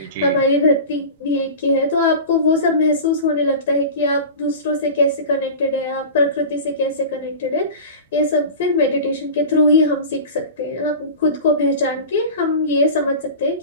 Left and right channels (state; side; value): inverted; both; correlation -0.32